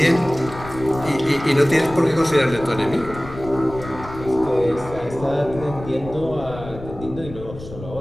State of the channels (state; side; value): noise; left; rumble, 14 dB below the sound